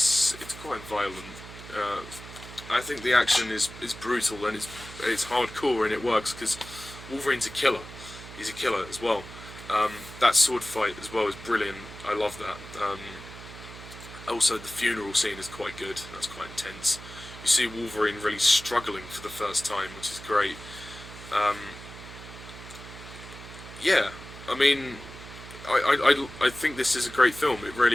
quite violent. I think the action is brutal, and it's hardcore, and it works because Wolverine's a killer. He's a killer as well. That sword fight as well is brilliant. I love that. Also, the funeral scene is quite good. That's quite intense. You see Wolverine really struggling for the first time, which is great. Yeah, I mean, I think this is a great film. It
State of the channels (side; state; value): right; noise; hum, 15 dB below the sound